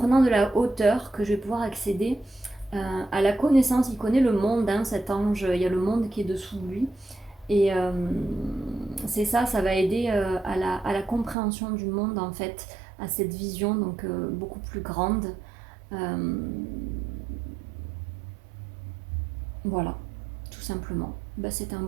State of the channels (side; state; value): left; drops out; at 11.4 s